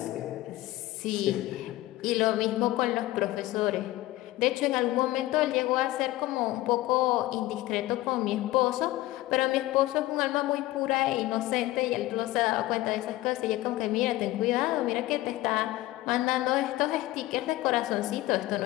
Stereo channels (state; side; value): quieter; right; 17.2 dB